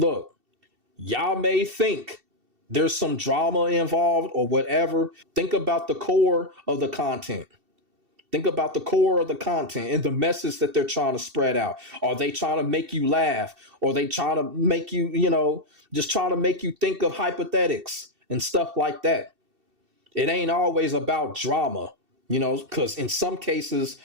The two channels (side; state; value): left; late; 2.7 ms